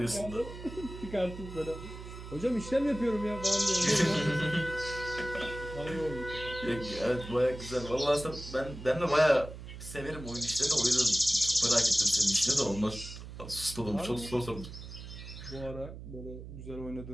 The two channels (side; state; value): right; noise; hum, 12 dB below the sound